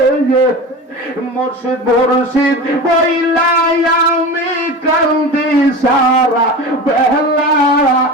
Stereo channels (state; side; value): normal; both; correlation 0.30